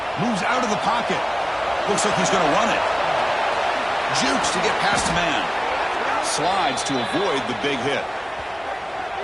Moves out of the pocket. Looks like he's going to run it. Jukes to get past the man. Slides to avoid the big hit.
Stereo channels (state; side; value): identical; both; correlation 1.00